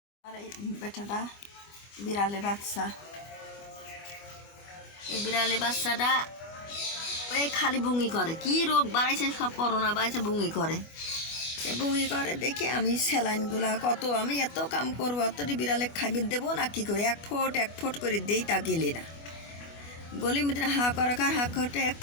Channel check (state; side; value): late; right; 25 ms